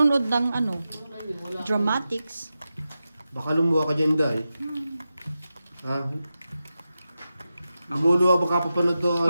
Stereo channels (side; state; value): both; inverted; correlation -0.92